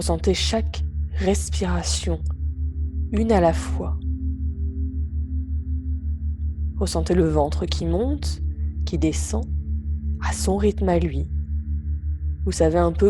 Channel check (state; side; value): identical; both; correlation 1.00